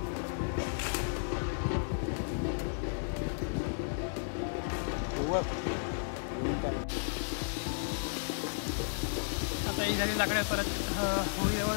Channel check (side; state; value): right; silent; digital silence